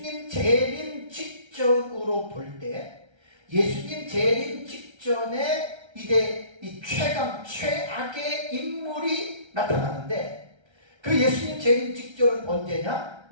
재림 직전으로 볼 때 예수님 재림 직전에 이제 이 최악의 인물이 나타나는데 그 예수님 재림 직전은 언제냐?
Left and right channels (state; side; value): late; left; 1.3 ms